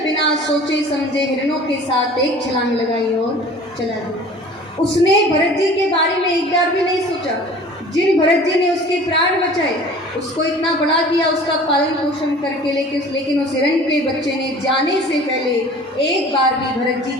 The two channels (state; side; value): normal; both; correlation 0.45